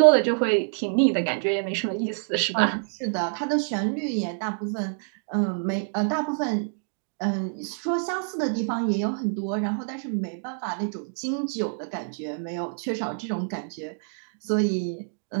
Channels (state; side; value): silent; left; digital silence